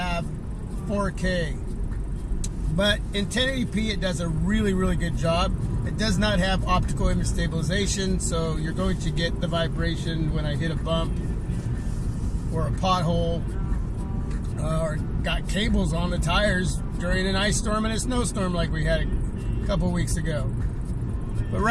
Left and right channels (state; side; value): identical; both; correlation 1.00